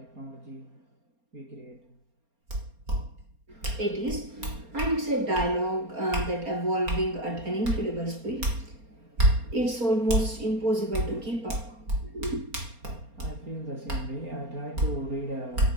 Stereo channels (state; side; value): late; left; 4.3 ms